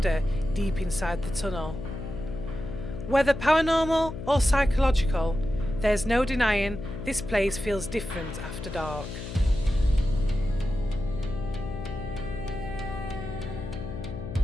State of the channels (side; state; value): left; noise; hum, 8 dB below the sound